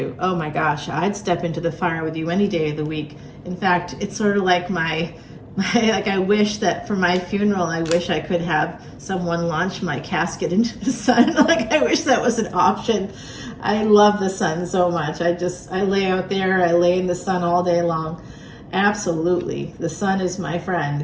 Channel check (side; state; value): both; identical; correlation 1.00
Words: Oh my gosh, I'd step into the fire with you any day of the week. In fact, it's sort of like my Like, I wish that for my funeral, I wish I could have someone launch my casket into the sun. Like, I wish that was an option. I love the sun so much. I lay out there, I lay in the sun all day long. Absolutely. The sun is my friend.